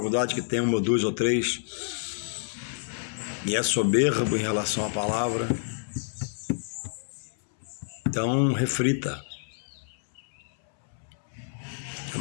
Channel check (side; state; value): right; silent; 59 dB below the other